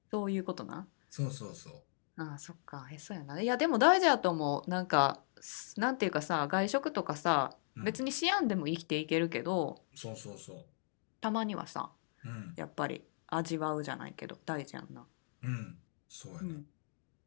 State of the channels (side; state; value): right; silent; digital silence